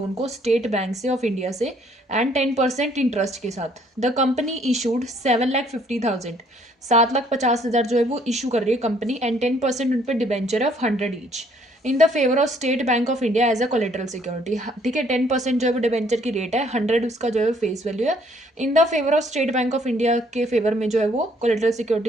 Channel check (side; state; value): both; normal; correlation 0.64